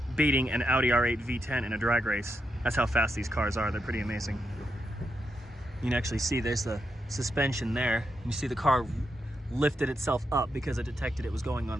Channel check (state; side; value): normal; both; correlation 0.84